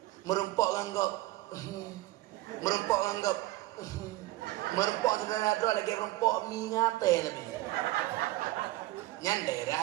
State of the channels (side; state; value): left; quieter; 18.0 dB